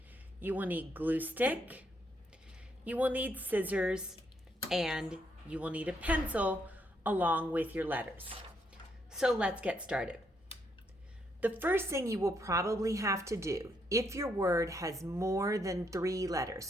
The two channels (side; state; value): both; normal; correlation 0.75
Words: you will need glue stick, you will need scissors, and you will need a pencil along with your letters. So let's get started. The first thing you will probably have to do, if your word has more than 3 letters,